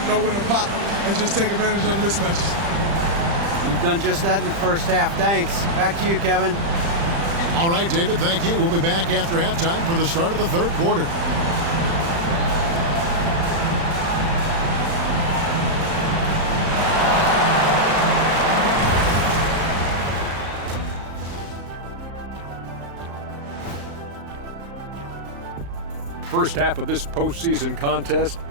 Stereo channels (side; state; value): left; late; 35 ms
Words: know when to pop and just take advantage of the mismatches. You've done just that in the first half. Thanks. Back to you, Kevin. All right, David, thank you. We'll be back after halftime for the start of the third quarter. First half of this postseason contest,